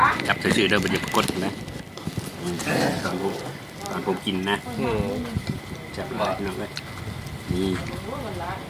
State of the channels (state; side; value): identical; both; correlation 1.00